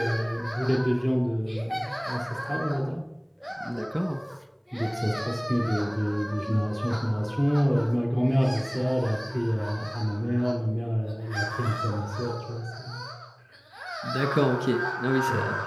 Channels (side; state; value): both; identical; correlation 1.00